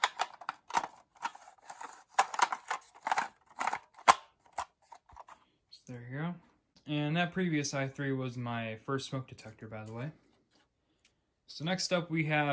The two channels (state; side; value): identical; both; correlation 1.00